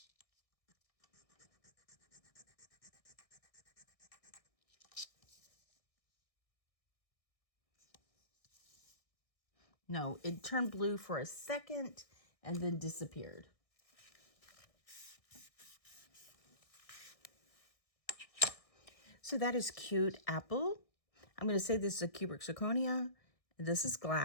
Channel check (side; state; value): right; late; 1.6 ms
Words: No, it turned blue for a second and then disappeared. So that is cute apple. I'm going to say this is a cubic zirconia. This is